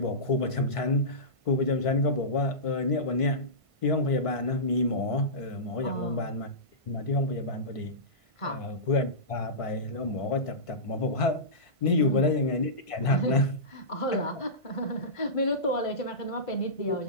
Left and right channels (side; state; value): right; late; 1.5 ms